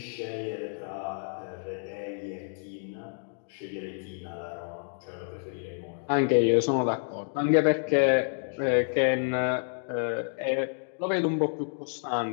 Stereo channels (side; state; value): right; silent; digital silence